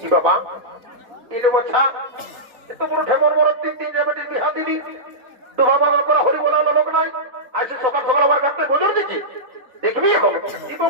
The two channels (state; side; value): late; left; 3.4 ms